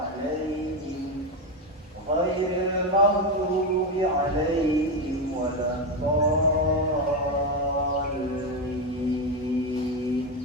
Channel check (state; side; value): normal; both; correlation 0.11